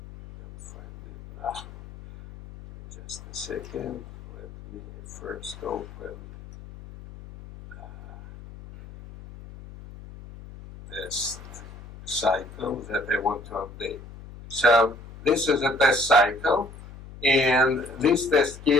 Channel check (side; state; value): left; noise; hum, 16 dB below the sound